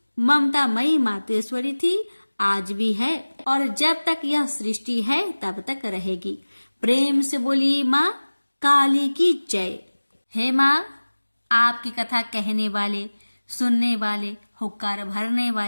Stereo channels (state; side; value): inverted; both; correlation -1.00